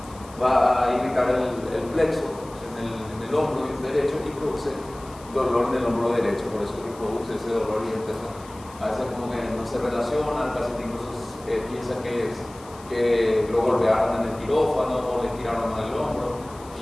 a irritar el plexo en el hombro derecho y produce dolor en el hombro derecho. Por eso que produce ese dolor, y entonces a veces como que no se relaciona, el paciente incluso piensa que lo golpearon en el quirófano o le tiraron mal el hombro,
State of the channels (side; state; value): left; noise; hiss, 22 dB below the sound